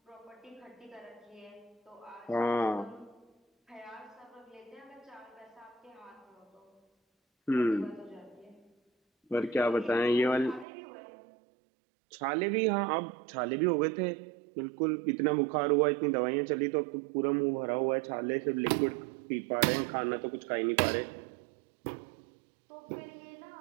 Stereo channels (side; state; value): left; drops out; at 10.7 s